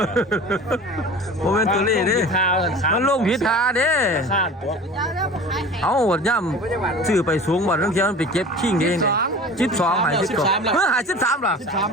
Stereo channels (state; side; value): normal; both; correlation 0.39